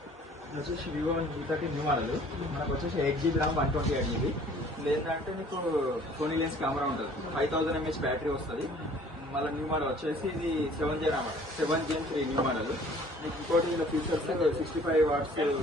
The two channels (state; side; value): normal; both; correlation 0.53